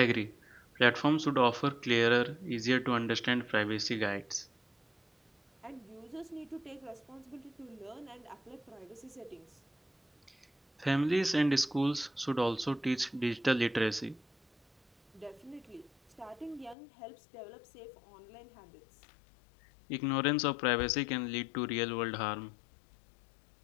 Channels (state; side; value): drops out; right; at 16.8 s